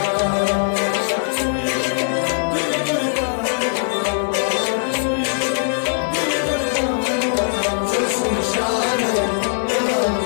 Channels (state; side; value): silent; right; digital silence